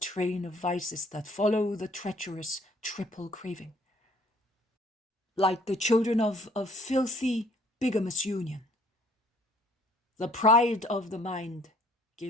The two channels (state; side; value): normal; both; correlation 0.59